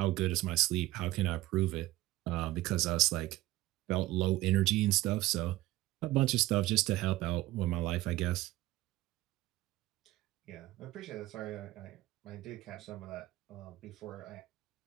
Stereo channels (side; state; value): left; quieter; 17.4 dB